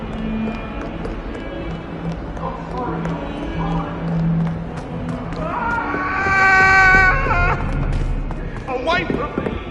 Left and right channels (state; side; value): identical; both; correlation 1.00